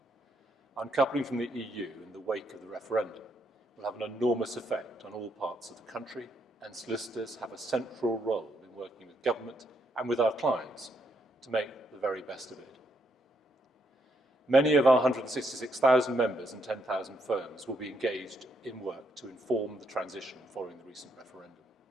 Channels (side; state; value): both; normal; correlation 0.76